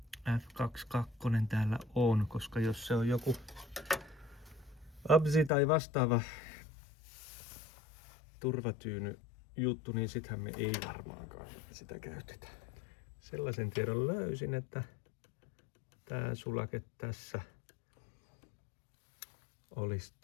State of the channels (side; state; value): right; drops out; at 5.5 s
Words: F22 täällä on, koska jos se on joku absi tai vastaava turvatyyny juttu, niin sittenhän me ei varmaankaan sitä käytetä. Sellaisen tiedon löysin, että tää sulake tässä olisi